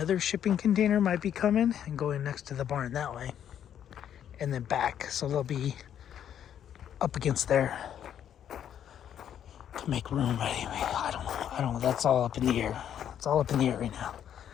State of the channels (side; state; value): right; quieter; 9.7 dB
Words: shipping container might be coming and going next to the barn that way. And then back. So they'll be up against there. to make room, but anyway, I don't know, that's all up in the air. It's all up in the air right now.